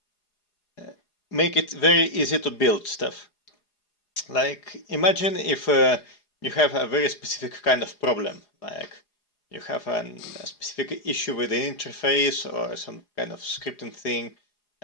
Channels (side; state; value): right; late; 4.8 ms